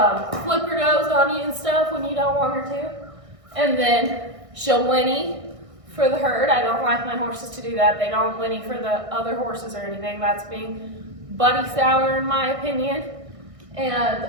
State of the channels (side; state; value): left; late; 1.6 ms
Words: flip her nose on you and stuff when you don't want her to. And then she'll whinny for the herd. I don't like my horses to do that. They don't whinny for the other horses or anything. That's being buddy sour in my opinion. And